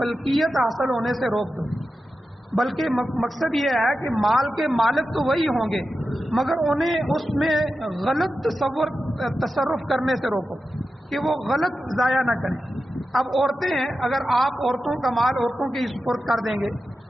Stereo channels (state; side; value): normal; both; correlation 0.91